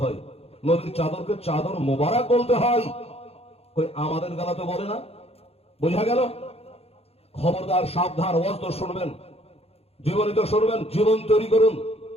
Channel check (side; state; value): right; late; 0.29 ms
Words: হয়, নবীর চাদরকে চাদর মুবারক বলতে হয়। কই আমাদের গালা তো বলে না। বোঝা গেল? খবরদার, সাবধান। ওয়াজ তো শুনবেন, জীবনী তো শুনবেন, জীবন তৈরি করুন।